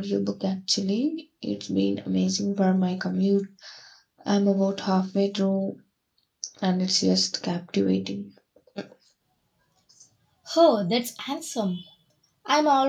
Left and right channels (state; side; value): identical; both; correlation 1.00